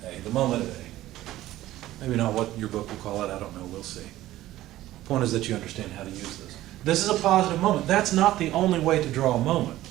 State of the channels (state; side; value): quieter; left; 15.1 dB